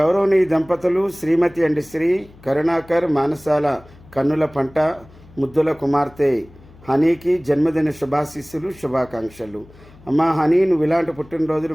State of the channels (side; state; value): left; noise; hum, 24 dB below the sound